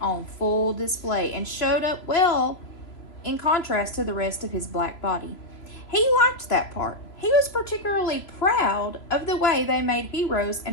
full display and showed up well in contrast to the rest of his black body. He liked that part. He was particularly proud of the way they made heroes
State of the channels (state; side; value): late; right; 3.2 ms